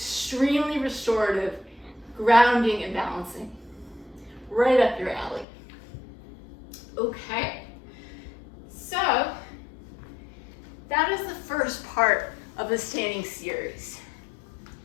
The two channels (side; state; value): right; drops out; at 5.5 s